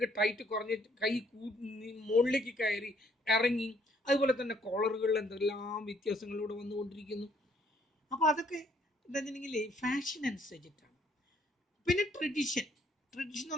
ടൈറ്റ് കുറഞ്ഞ് കൈ മുകളിലേക്ക് കയറി ഇറങ്ങി. അതുപോലെ തന്നെ കോളറുകളിൽ എന്തെല്ലാം വ്യത്യാസങ്ങളിലൂടെ വന്നുകൊണ്ടിരിക്കുന്നു. അപ്പോൾ അതൊക്കെ എന്താണെന്നുണ്ടെങ്കിൽ ഫാഷൻ അനുസരിച്ചിട്ടാണ്. പിന്നെ ട്രഡീഷൻ എന്ന്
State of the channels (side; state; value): both; normal; correlation 0.66